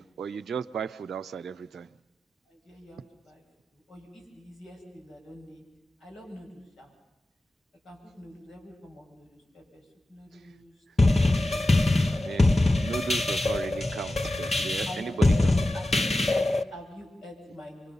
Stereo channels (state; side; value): normal; both; correlation 0.93